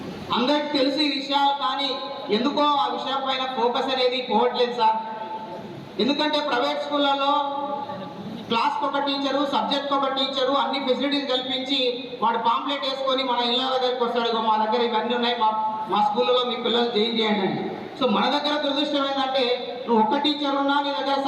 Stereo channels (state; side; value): identical; both; correlation 1.00